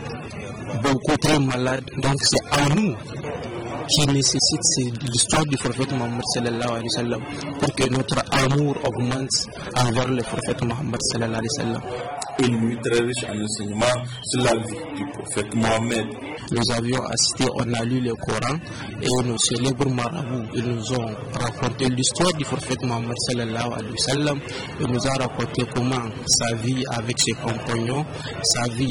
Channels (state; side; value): identical; both; correlation 1.00